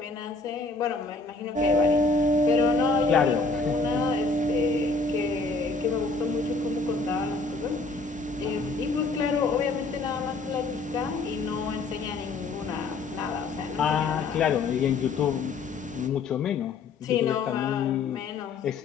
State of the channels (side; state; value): right; quieter; 3.9 dB